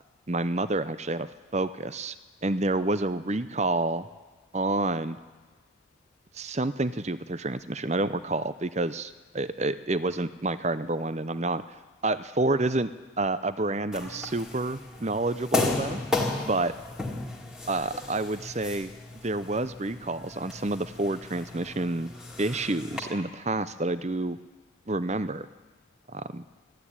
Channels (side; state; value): both; normal; correlation 0.33